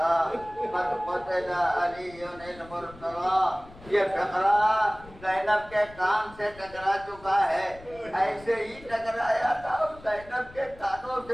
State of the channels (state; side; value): noise; left; rumble, 21 dB below the sound